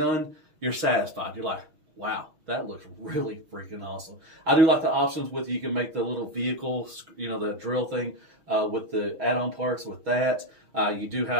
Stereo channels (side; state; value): left; late; 6.3 ms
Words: you're satisfied. You're like, wow, that looks really freaking awesome. I do like the options with you can make the little vehicle, you know, the drill thing with the add-on parts with that. You do